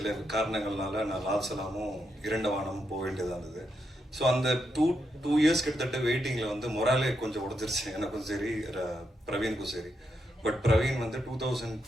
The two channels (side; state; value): both; normal; correlation 0.82